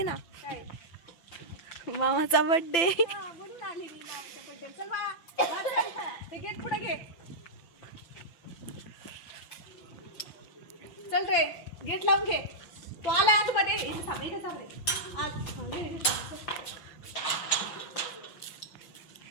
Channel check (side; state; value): right; late; 6.0 ms